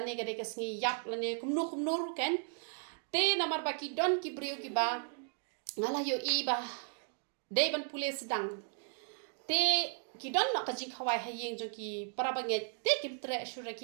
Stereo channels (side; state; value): left; silent; 54 dB below the other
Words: ne kade ka sngi yap la ne kumnu ken te namar baki don ki brio ki ba ngala yo ba de ban pule sedang te ki don no ka jing khawai hayeng jong ki para banget te kim tre shura